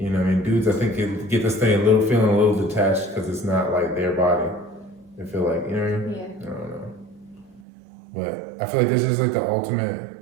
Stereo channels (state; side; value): drops out; left; at 7.6 s